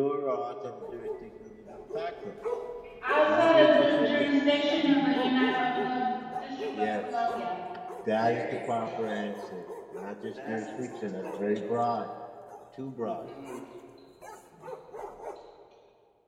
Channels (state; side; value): identical; both; correlation 1.00